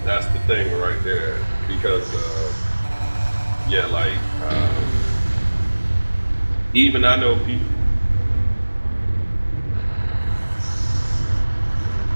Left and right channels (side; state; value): both; inverted; correlation -1.00